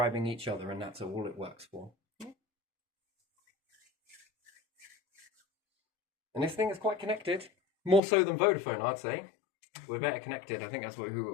each other, and that's all it works for. Yeah. And this thing is quite connected, more so than Vodafone, I'd say. We're better connected. I think that's who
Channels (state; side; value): drops out; right; at 8.0 s